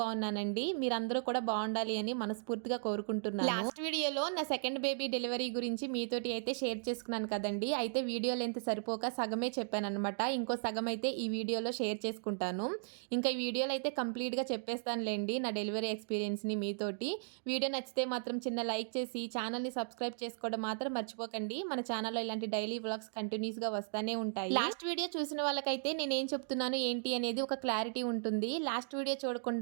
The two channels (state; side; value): silent; left; digital silence